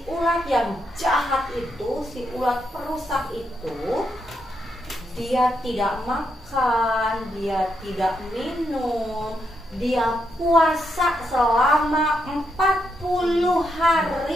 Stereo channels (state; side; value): normal; both; correlation 0.80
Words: ulat yang jahat itu, si ulat perusak itu, dia tidak makan, dia tidak minum, dia puasa selama 40